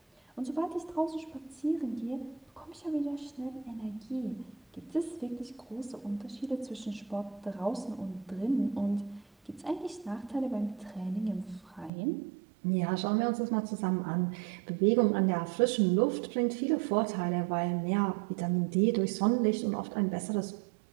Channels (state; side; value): drops out; left; at 11.9 s